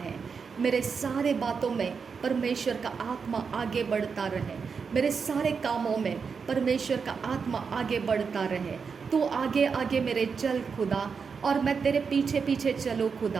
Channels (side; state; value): left; quieter; 5.7 dB